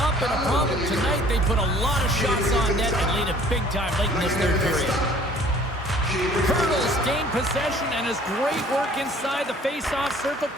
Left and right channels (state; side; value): normal; both; correlation 0.53